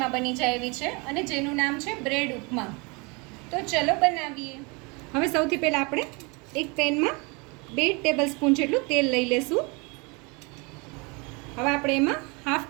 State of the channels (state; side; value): quieter; left; 29.3 dB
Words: બની જાય એવી છે અને જેનું નામ છે બ્રેડ ઉપમા. તો ચલો બનાવીએ. હવે સૌથી પહેલાં આપણે એક પેનમાં 2 ટેબલસ્પૂન જેટલું તેલ લઈ લેશું. હવે આપણે એમાં ½